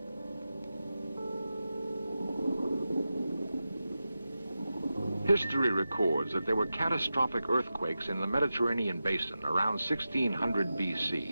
History records that there were catastrophic earthquakes in the Mediterranean basin around 1600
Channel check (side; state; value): both; inverted; correlation -0.92